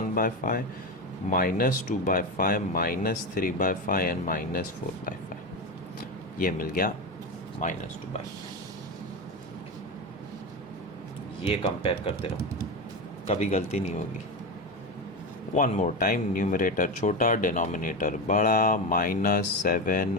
by 5, -2 by 5, -3 by 5 and -4 by 5. ये मिल गया -2 by 5. ये कंपेयर करते रहो, कभी गलती नहीं होगी. One more time. न्यूमरेटर छोटा, डिनोमिनेटर बड़ा, -7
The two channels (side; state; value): both; normal; correlation 0.18